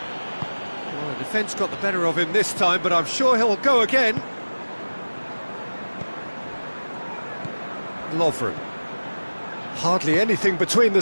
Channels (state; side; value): inverted; both; correlation -1.00